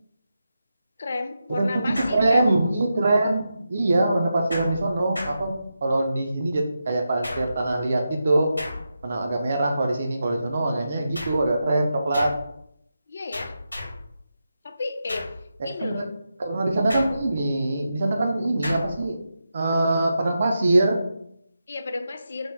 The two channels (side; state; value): both; inverted; correlation -0.88